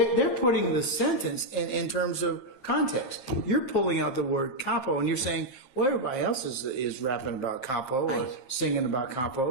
putting the sentence in terms of context. You're pulling out the word capo, and you're saying, well, everybody else is rapping about capo or singing about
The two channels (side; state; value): right; late; 7.6 ms